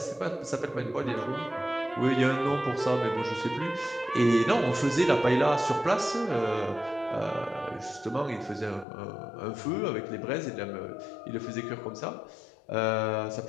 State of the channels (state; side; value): drops out; right; at 8.8 s